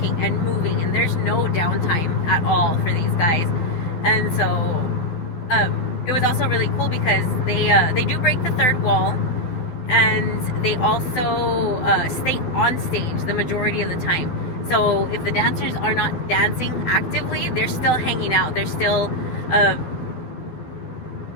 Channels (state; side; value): late; right; 12 ms